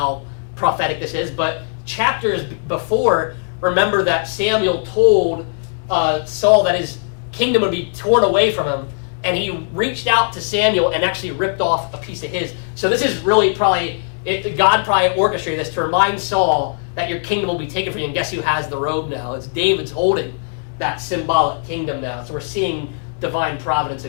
prophetic this is, but chapters before, remember that Samuel told Saul that his kingdom would be torn away from him, and he reached out to Samuel and actually ripped off a piece of his. So this is really God probably orchestrated this to remind Saul that your kingdom will be taken from you, and guess who has the robe now? It's David's holding that symbolic kingdom now. So we're seeing divine providence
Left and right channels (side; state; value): right; silent; 65 dB below the other